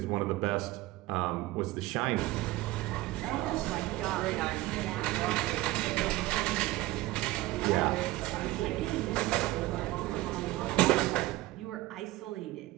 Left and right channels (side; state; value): left; quieter; 18.2 dB